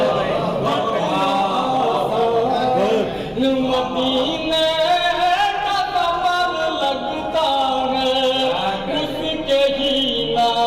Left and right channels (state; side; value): identical; both; correlation 1.00